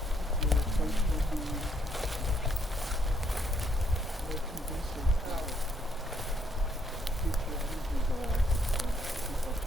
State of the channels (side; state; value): both; normal; correlation 0.72